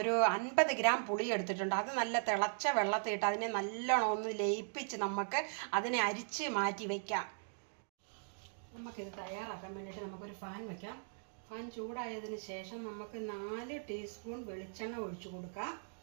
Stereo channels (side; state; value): left; silent; digital silence